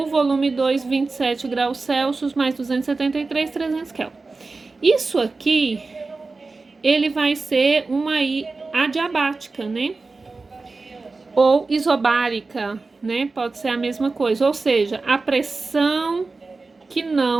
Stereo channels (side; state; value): left; quieter; 3.8 dB